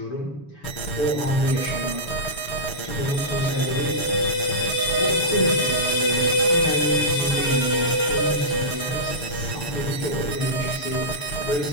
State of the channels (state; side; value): late; right; 6.9 ms